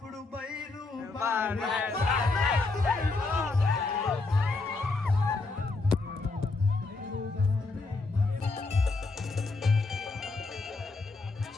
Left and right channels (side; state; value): right; quieter; 3.6 dB